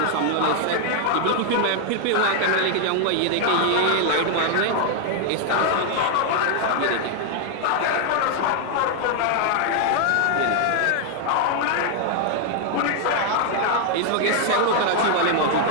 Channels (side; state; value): both; different; correlation 0.00